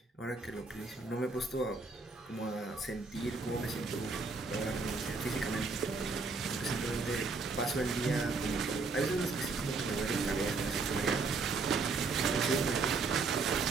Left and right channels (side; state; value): left; quieter; 4.1 dB